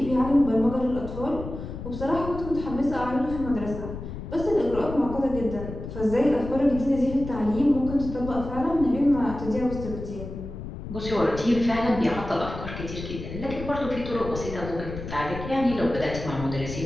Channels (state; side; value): noise; left; rumble, 9 dB below the sound